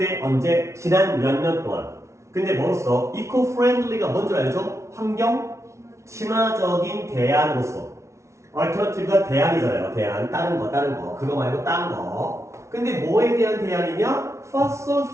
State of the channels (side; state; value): left; late; 0.14 ms